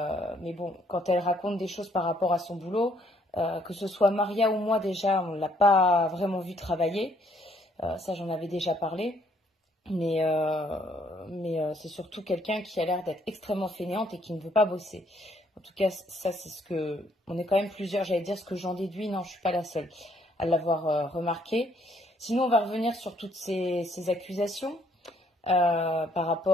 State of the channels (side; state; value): both; normal; correlation 0.67